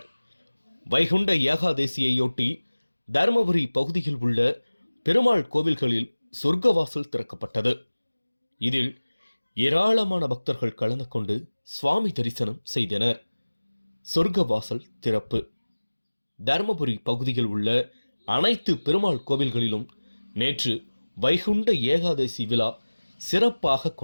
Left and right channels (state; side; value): inverted; both; correlation -1.00